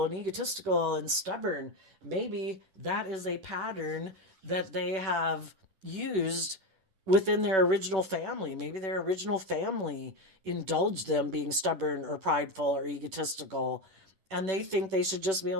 and egotistical and stubborn. Maybe that is a pattern that they have used within their original family. Maybe their original family indulged them being stubborn or prideful or egotistical, and they think they should just be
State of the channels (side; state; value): left; late; 10 ms